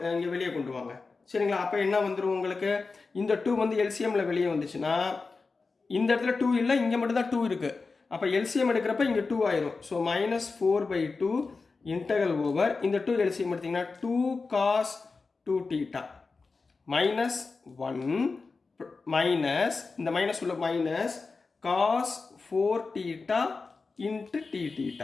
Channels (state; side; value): quieter; right; 4.2 dB